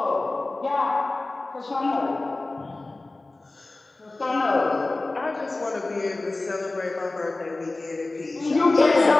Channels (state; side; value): quieter; right; 3.1 dB